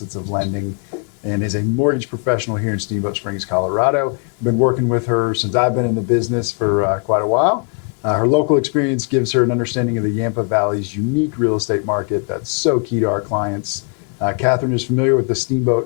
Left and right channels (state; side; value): quieter; right; 39.5 dB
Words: of lending, and is a mortgage professional here in Steamboat Springs, Colorado. I've been working with her since I've been in the business for quite a while. Her local experience gives her an understanding of the Yampa Valley's unique real estate market that's so key to our clients. Kathryn is familiar with the